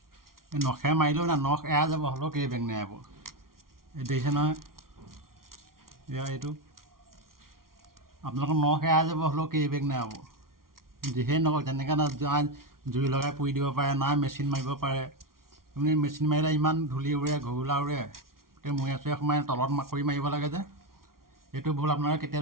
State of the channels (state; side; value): late; left; 0.92 ms